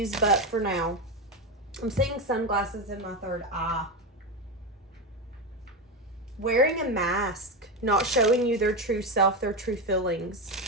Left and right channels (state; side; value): normal; both; correlation 0.14